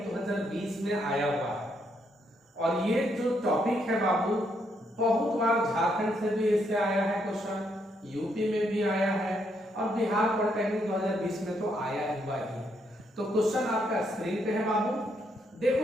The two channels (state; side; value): normal; both; correlation 0.75